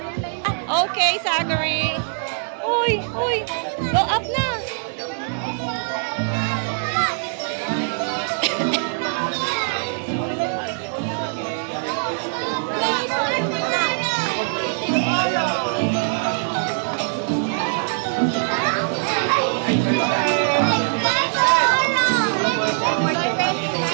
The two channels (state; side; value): silent; left; 57 dB below the other